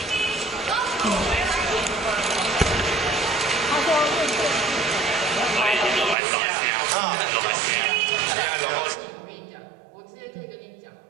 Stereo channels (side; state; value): left; drops out; at 6.2 s